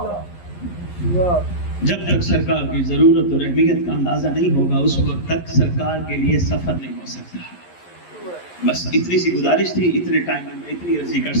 جب تک سرکار کی ضرورت اور اہمیت کا اندازہ نہیں ہوگا اس وقت تک سرکار کے لیے سفر نہیں ہو سکتا. بس اتنی سی گزارش تھی, اتنے ٹائم میں اتنی عرضی کر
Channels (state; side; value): late; right; 11 ms